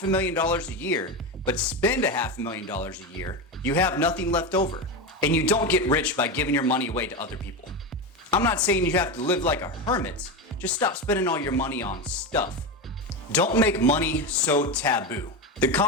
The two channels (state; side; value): normal; both; correlation 0.17